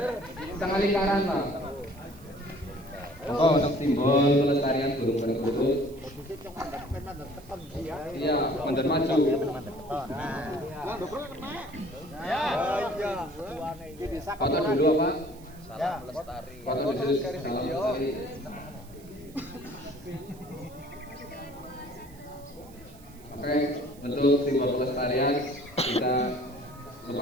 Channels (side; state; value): right; noise; hiss, 24 dB below the sound